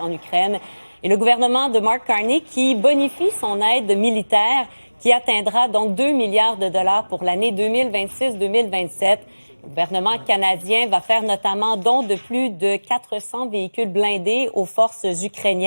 Ukraine. Et le gouvernement de Mark Carney qui bonifie son aide militaire qui atteindra donc 2 milliards de dollars pour l'année 2026-2027. Le gouvernement canadien va faire notamment don de plus de 400 véhicules blindés aux forces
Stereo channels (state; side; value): inverted; both; correlation -1.00